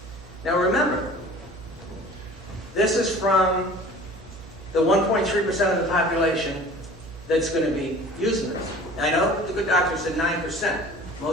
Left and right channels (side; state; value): both; normal; correlation 0.44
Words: Now remember, this is from the 1.3% of the population that's going to be using this. I know the good doctor said 9%.